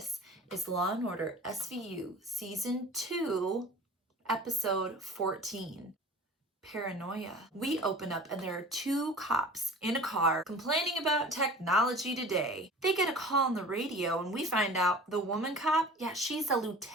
is Law & Order SVU Season 2, Episode 14, Paranoia. We open up and there are two cops in a car complaining about technology today. They get a call on the radio and we find out the woman cop, yeah, she's a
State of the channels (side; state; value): both; normal; correlation 0.42